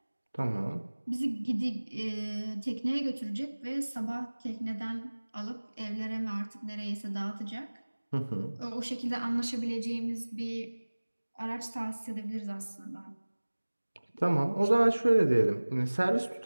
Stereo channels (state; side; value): inverted; both; correlation -1.00